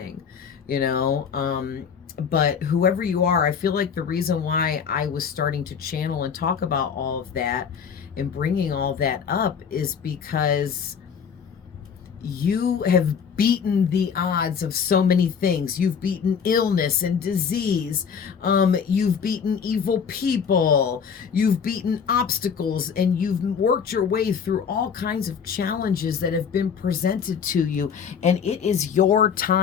you know. But whoever you are, I feel like the reason why I was starting to channel and talk about all of that and bringing all that up is because you have beaten the odds of so many things. You've beaten illness and disease. You've beaten evil people. You've beaten obstacles, and you've worked your way through all kinds of challenges that have been presented to you. And it is your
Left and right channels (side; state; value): right; quieter; 6.8 dB